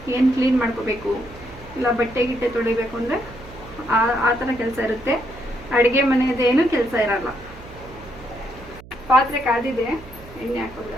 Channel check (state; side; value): noise; right; hum, 19 dB below the sound